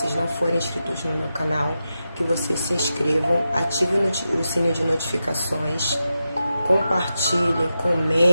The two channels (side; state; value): both; inverted; correlation -0.90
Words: não forem inscritos no meu canal, que vocês se inscrevam, ativem o sininho de notificações, compartilhem,